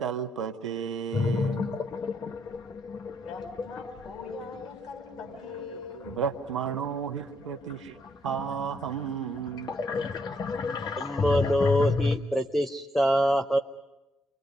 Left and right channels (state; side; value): normal; both; correlation 0.74